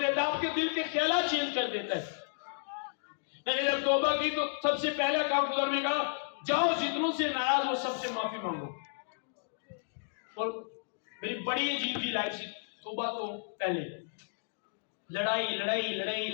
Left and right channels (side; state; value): right; silent; digital silence